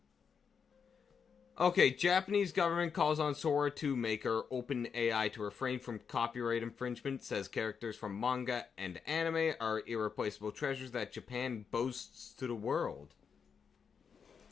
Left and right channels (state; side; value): quieter; right; 6.4 dB